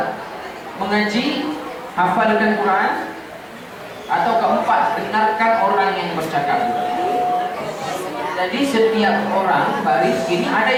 mengaji, hafalkan Quran. Atau keempat, dengarkan orang yang bercakap. Jadi setiap orang baris ini ada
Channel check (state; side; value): identical; both; correlation 1.00